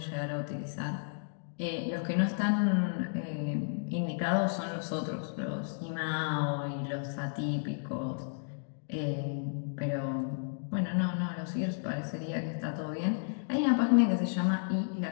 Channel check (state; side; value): silent; right; digital silence